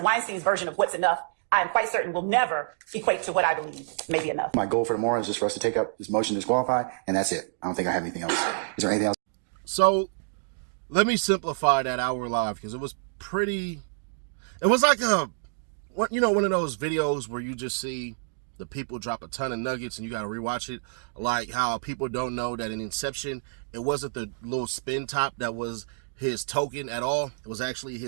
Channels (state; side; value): silent; left; digital silence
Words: Weinstein's version of what's enough, I am quite certain will never equate to what I believe may be enough. My goal for tomorrow is just for us to take up this motion to disqualify, and that's it. I don't think I have anything else. Is there anything else? So let me simplify that hour live, because it was like one of those videos where you just see the people drop a ton of nuggets and you got to rewatch it. Like how people don't know that in Inception, it wasn't the little spin top that was his token at all. It was actually